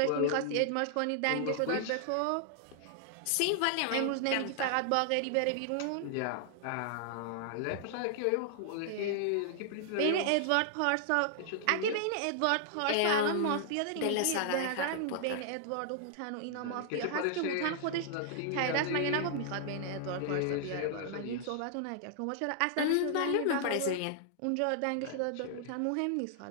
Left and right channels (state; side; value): different; both; correlation -0.01